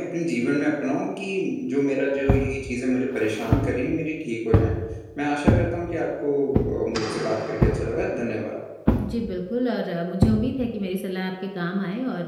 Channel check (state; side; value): identical; both; correlation 1.00